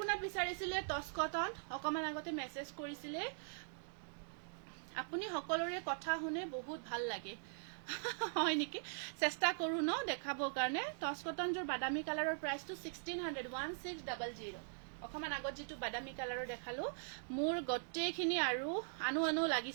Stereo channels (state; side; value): silent; left; digital silence